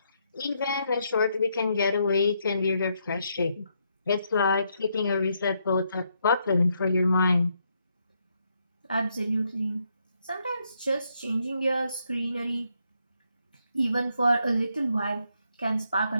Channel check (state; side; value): inverted; both; correlation -0.77